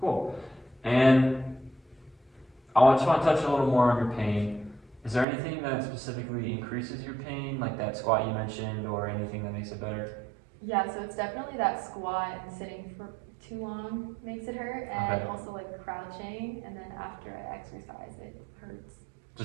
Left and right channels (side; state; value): left; drops out; at 5.2 s